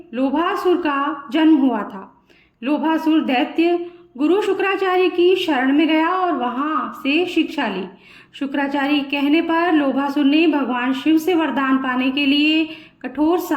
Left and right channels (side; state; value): both; identical; correlation 1.00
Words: लोभासुर का जन्म हुआ था। लोभासुर दैत्य गुरु शुक्राचार्य की शरण में गया और वहां से शिक्षा ली। शुक्राचार्य के कहने पर लोभासुर ने भगवान शिव से वरदान पाने के लिए कठोर